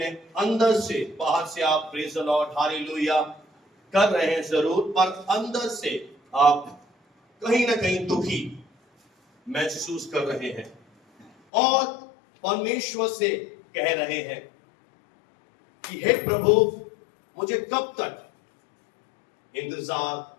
अंदर से, बाहर से आप प्रेज़ द लॉर्ड, हालेलुया कर रहे हैं जरूर, पर अंदर से आप कहीं ना कहीं दुखी महसूस कर रहे हैं और परमेश्वर से कह रहे हैं कि हे प्रभु, मुझे कब तक इंतजार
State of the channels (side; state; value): right; drops out; at 11.3 s